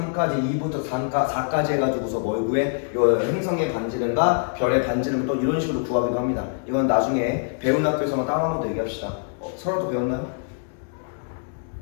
2부터 4까지 해가지고서 뭘 구해? 요 행성의 반지름과 별의 반지름을 또 이런 식으로 구하기도 합니다. 이건 나중에 배운 학교에서만 따로 한번 더 얘기합시다. 서로도 배웠나요?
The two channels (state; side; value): silent; right; digital silence